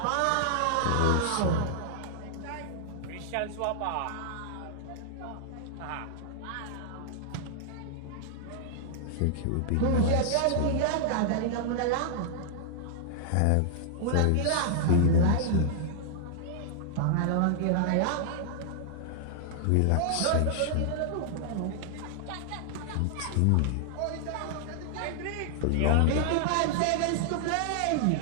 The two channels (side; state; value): both; different; correlation -0.01